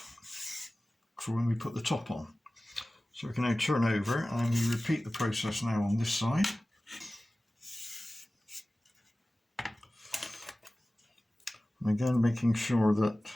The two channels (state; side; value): normal; both; correlation 0.97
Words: for when we put the top on. So we can now turn over and we repeat the process now on this side. And again, making sure that